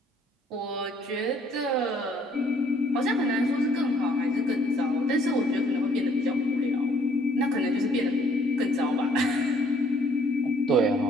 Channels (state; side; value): normal; both; correlation 0.62